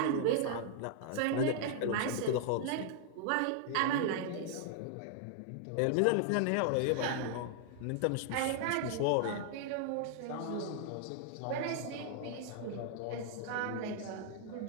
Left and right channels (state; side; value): different; both; correlation 0.00